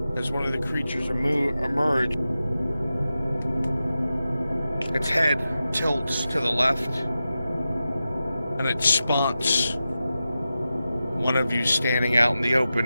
as one of the creatures emerge. Its head tilts to the left, and it spots one of you standing out in the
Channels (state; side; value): inverted; both; correlation -0.93